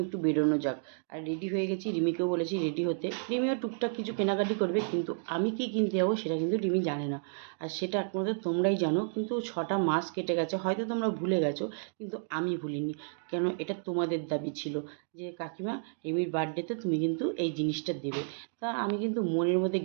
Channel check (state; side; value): silent; left; digital silence